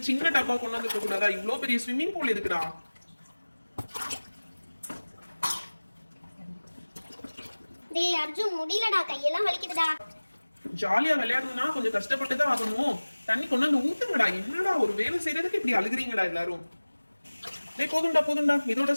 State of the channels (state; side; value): inverted; both; correlation -1.00